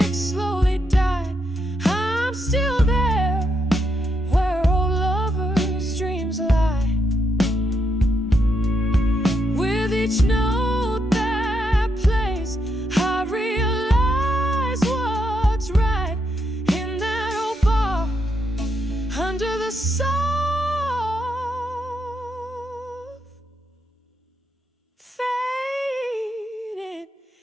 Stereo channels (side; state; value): both; normal; correlation 0.80